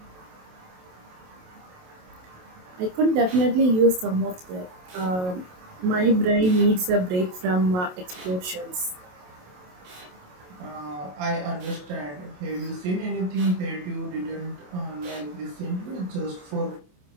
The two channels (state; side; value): late; left; 27 ms